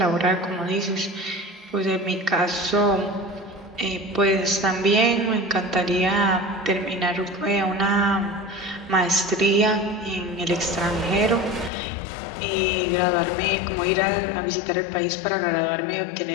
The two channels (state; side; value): drops out; right; at 11.7 s